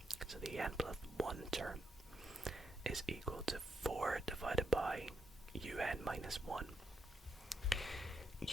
so the n plus 1 term is equal to 4 divided by un minus 1.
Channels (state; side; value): normal; both; correlation 0.80